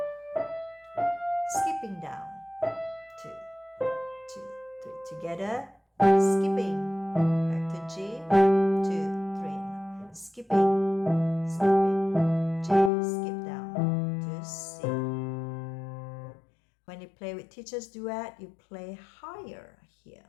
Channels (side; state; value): right; drops out; at 12.9 s